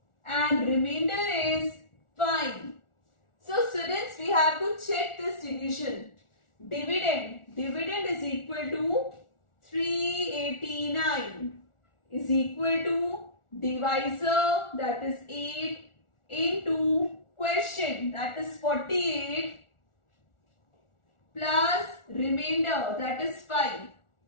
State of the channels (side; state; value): right; late; 1.4 ms